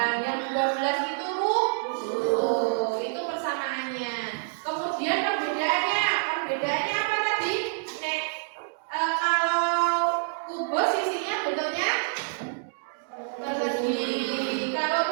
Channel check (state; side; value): silent; left; digital silence